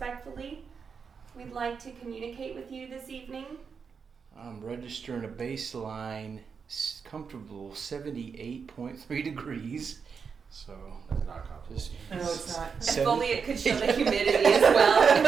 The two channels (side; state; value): left; quieter; 5.9 dB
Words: We'd like to communicate with you this evening. I'm registering a baseline comfortable 78.3 degrees. So That's not comfortable. just No, it's not. If only it could show the humidity as